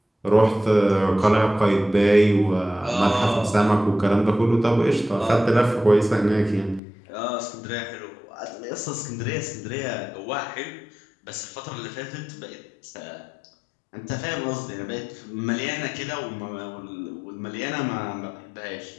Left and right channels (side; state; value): right; drops out; at 6.8 s